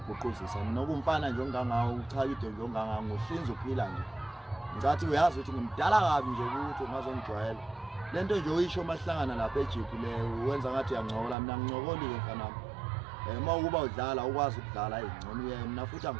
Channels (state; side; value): drops out; left; at 11.4 s